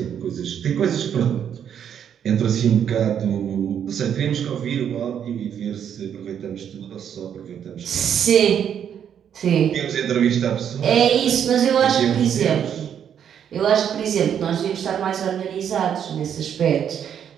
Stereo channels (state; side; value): quieter; left; 8.8 dB